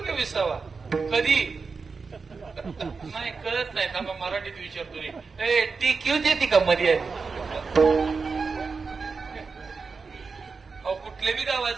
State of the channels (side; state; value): left; quieter; 4.8 dB